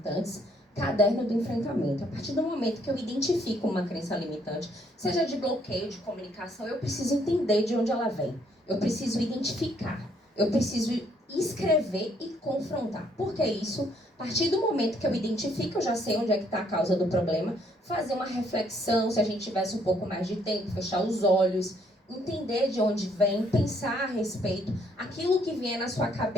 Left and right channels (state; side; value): normal; both; correlation 0.68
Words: Caderno do enfrentamento. A partir do momento que eu identifico uma crença limitante, seja de bloqueio, de comunicação, eu preciso entender de onde ela vem. Eu preciso identificar. Eu preciso escrever e confrontar. Por que isso? A partir do momento que eu identifico, eu já sei onde é que está a causa do problema, fazer uma reflexão, se a gente tivesse um pouco mais de tempo, fechar os olhos, entender de onde vem, pensar a respeito. Aquilo que vier na sua